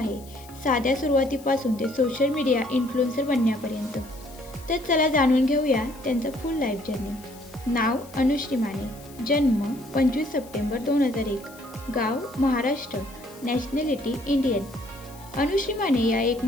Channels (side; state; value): left; noise; hiss, 22 dB below the sound